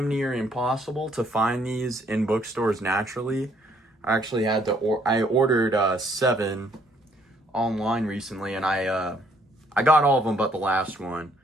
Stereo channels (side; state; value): both; normal; correlation 0.66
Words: near impossible to find these in bookstores naturally. I actually had to, I ordered 7 online recently, and I got all of them but the last one.